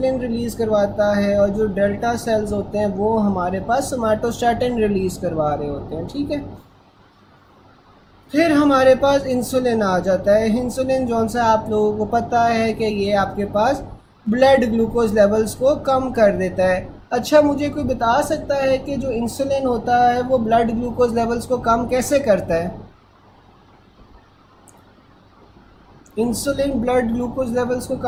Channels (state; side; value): identical; both; correlation 1.00